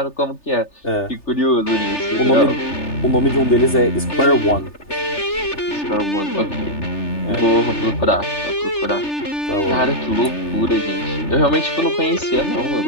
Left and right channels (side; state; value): right; late; 3.4 ms